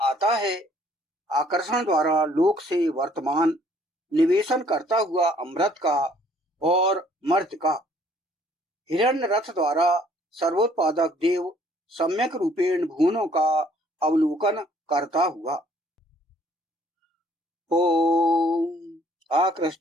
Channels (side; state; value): both; normal; correlation 0.60